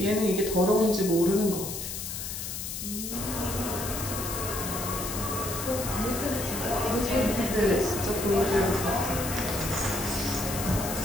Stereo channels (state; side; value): noise; left; hiss, 6 dB below the sound